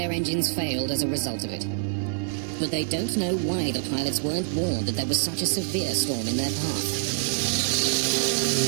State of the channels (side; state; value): left; silent; 61 dB below the other